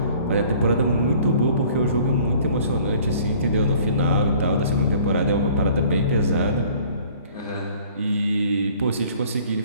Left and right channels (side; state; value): both; inverted; correlation -0.53